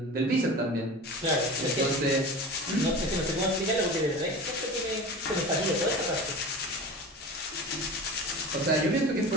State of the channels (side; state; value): both; normal; correlation 0.33